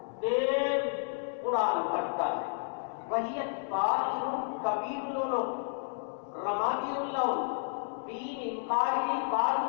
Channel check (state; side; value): silent; right; digital silence